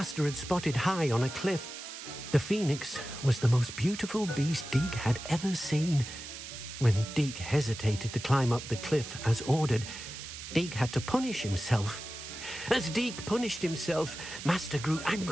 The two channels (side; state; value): right; noise; hiss, 10 dB below the sound